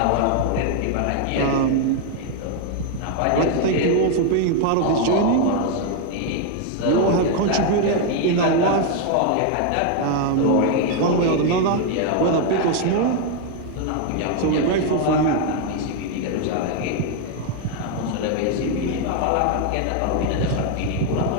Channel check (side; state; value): both; different; correlation 0.01